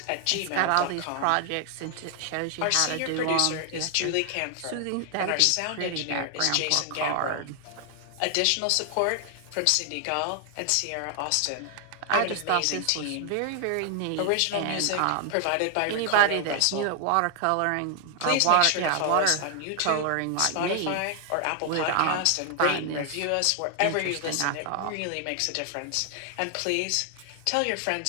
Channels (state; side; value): different; both; correlation 0.00